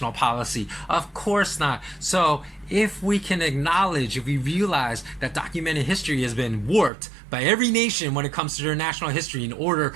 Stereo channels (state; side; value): drops out; left; at 6.9 s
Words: policy? Of course not. So if we can acknowledge, if we realize that documented history has been warped by every nation when it comes to their national history in order